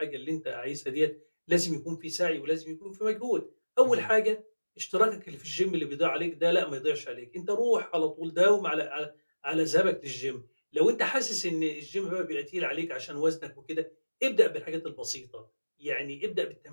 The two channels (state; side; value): inverted; both; correlation -1.00